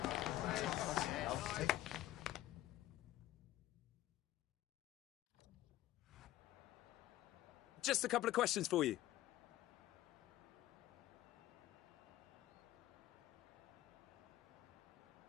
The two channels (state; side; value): quieter; right; 14.8 dB